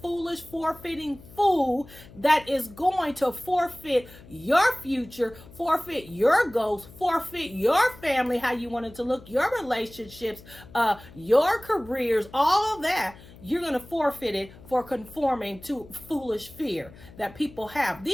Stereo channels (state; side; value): noise; left; hum, 20 dB below the sound